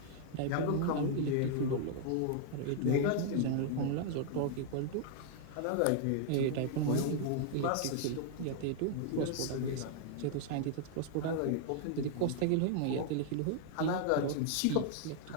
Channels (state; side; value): different; both; correlation -0.01